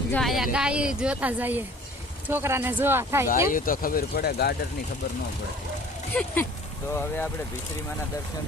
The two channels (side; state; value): both; normal; correlation 0.49